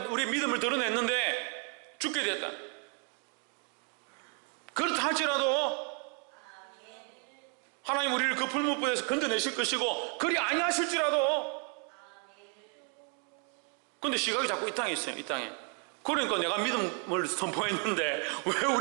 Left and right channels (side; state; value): left; quieter; 34.7 dB